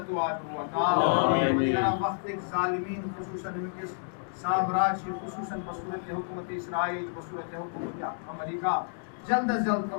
و عدو عطا دیگر وقت ایک ظالمین خصوصاً ان کے سامراج خصوصاً بصورت حکومت اسرائیل بصورت حکومت امریکہ جلد از جلد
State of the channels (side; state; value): right; silent; digital silence